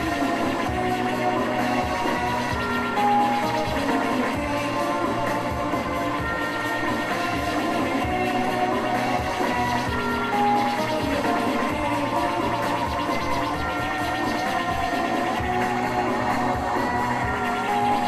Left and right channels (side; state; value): both; identical; correlation 1.00